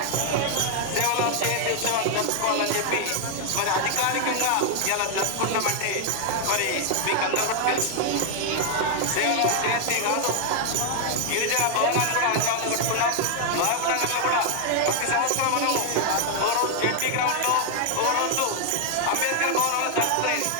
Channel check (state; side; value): different; both; correlation 0.00